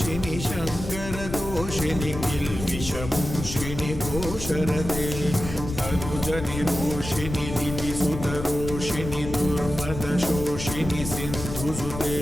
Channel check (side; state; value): left; noise; rumble, 8 dB below the sound